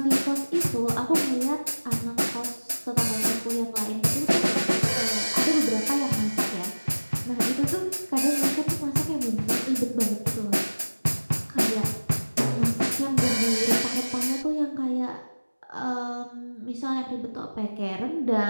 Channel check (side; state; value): both; inverted; correlation -1.00